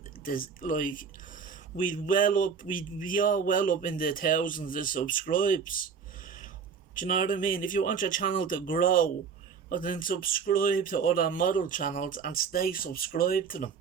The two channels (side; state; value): left; quieter; 6.2 dB